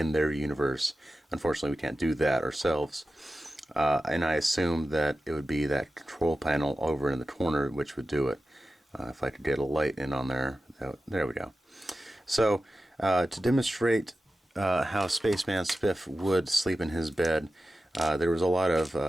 universe. Unfortunately, we can't do that ourselves. And I assume that it would be that control panel over in the corner which would do it. If I could get a light in on there. There we go. So, to demonstrate how Spaceman Spiff would sleep in his bed, there was a lot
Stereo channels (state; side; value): normal; both; correlation 0.94